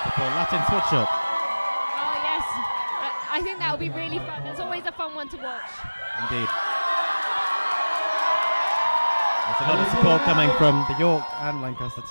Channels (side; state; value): both; inverted; correlation -1.00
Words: before Latin switch up. Oh yes, I think that will be really fun. It's always a fun one to watch. Indeed. There's a lot of support coming from the York and Lancaster